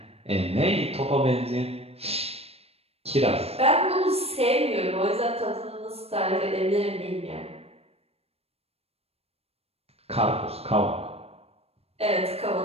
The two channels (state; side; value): late; left; 0.29 ms